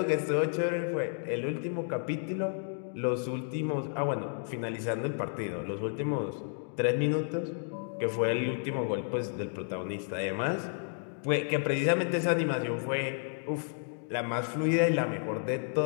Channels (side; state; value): right; silent; 57 dB below the other